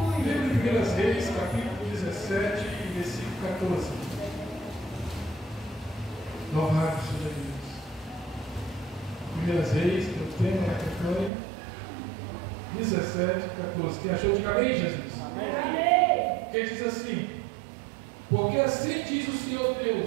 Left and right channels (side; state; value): left; drops out; at 11.3 s